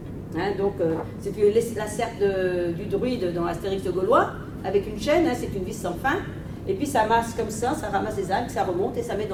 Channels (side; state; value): both; identical; correlation 1.00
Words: Hein, donc c'est la serpe du druide dans Astérix le Gaulois, avec une chaîne, hein, c'est une vis sans fin, et puis ça masse comme ça ramasse les algues, ça remonte et ça met